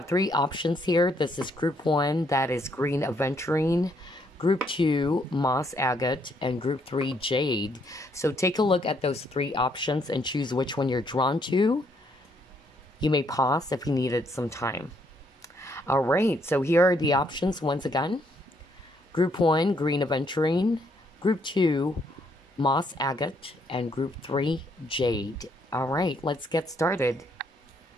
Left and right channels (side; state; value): both; normal; correlation 0.71